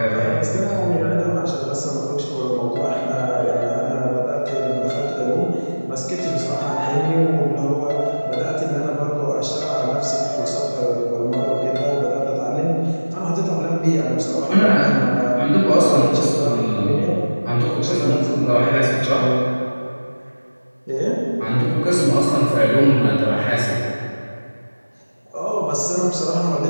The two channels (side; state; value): both; inverted; correlation -1.00